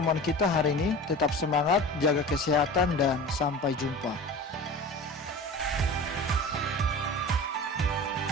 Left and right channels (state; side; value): normal; both; correlation 0.36